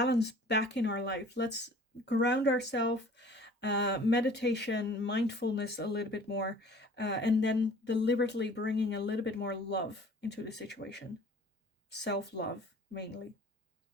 back in our life. Let's ground ourselves. Meditation, mindfulness a little bit more, and then deliberately bringing a little bit more love into the situation. Self-love, mainly.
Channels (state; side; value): normal; both; correlation 0.49